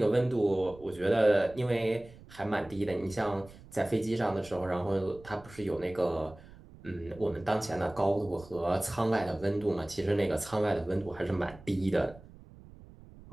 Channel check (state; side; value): noise; right; rumble, 20 dB below the sound